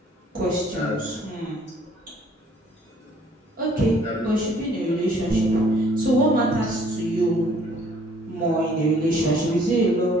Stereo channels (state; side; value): normal; both; correlation 0.59